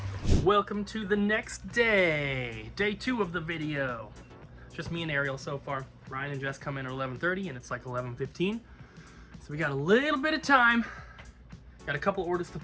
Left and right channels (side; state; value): both; identical; correlation 1.00